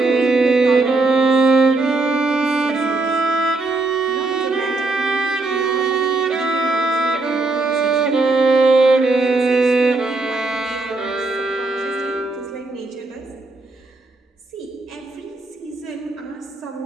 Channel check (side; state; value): left; quieter; 3.3 dB